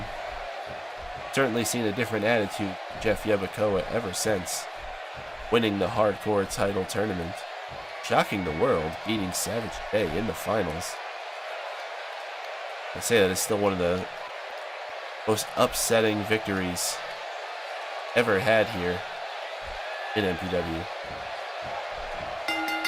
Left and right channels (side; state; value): both; identical; correlation 1.00